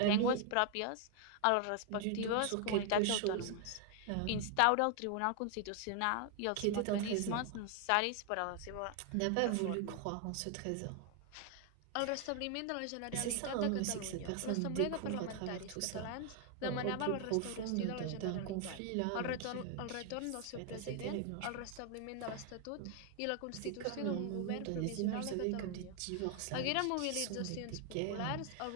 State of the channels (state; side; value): different; both; correlation 0.00